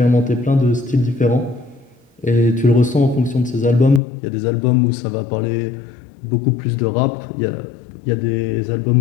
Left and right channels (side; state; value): right; drops out; at 4.0 s